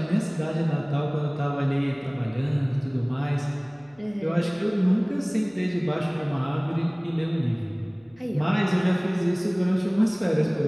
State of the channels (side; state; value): left; noise; hum, 30 dB below the sound